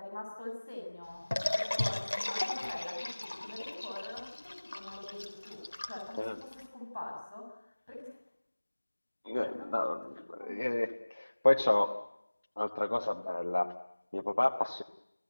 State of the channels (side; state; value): both; inverted; correlation -1.00